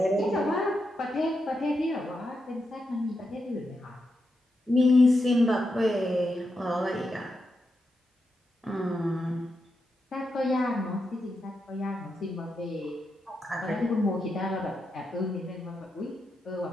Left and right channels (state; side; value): normal; both; correlation 0.86